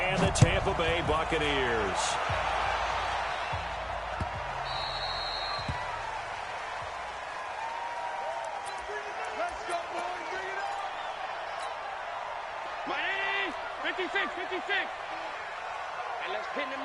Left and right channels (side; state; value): both; identical; correlation 1.00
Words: the Tampa Bay Buccaneers. Miami, 56. And let's pin the